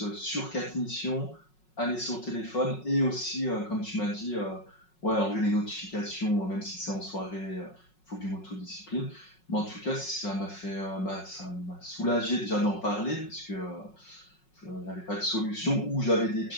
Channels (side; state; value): right; late; 5.4 ms